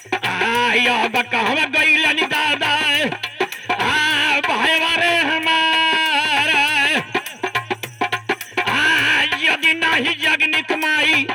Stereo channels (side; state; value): both; identical; correlation 1.00